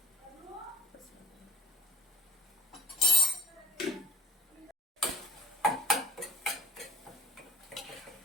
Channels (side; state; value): both; normal; correlation 0.41